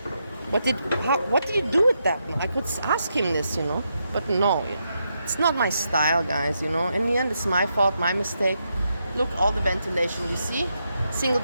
What did you do with that? I could ask him this, but no, it's not my style, guys, In the end, it's my fault, my mistake. Look, all the ventilation, you see? Single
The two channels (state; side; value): inverted; both; correlation -0.82